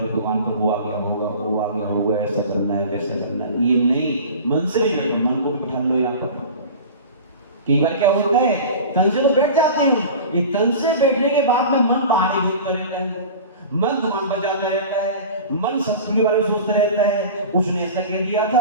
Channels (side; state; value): both; inverted; correlation -0.36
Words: दुकान पर वो आ गया होगा, वो आ गया होगा, ऐसा करना है वैसा करना है, ये नहीं। मन से भी बैठो, मन को भी बिठा लो यहाँ पर। कई बार क्या होता है, तन से तो बैठ जाते हो, ये तन से बैठने के बाद में मन बाहर ही घूमता रहता है, मन दुकान पर जाता रहता है, मन शत्रु के बारे में सोचता रहता है, उसने ऐसा कह दिया था,